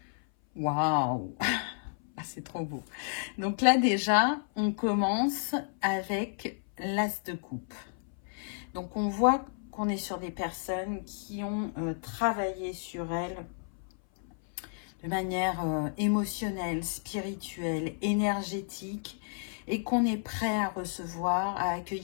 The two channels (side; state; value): right; silent; 57 dB below the other